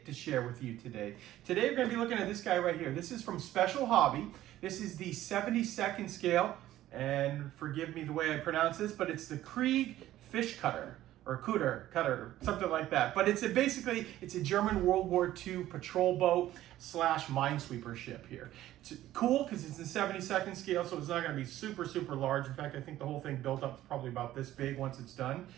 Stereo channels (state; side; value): quieter; left; 14.1 dB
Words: to share with you today. Today we're going to be looking at this guy right here. This is from Special Hobby. This is the 72nd scale, and forgive me the way I pronounce this, but it's the KRIEGSFISCHKUTTER, or cutter, something like that. But it's basically a German World War II patrol boat slash minesweeper ship here. It's cool because it's in 72nd scale, so it's not going to be super large. In fact, I think the whole thing built up is probably about this big once it's done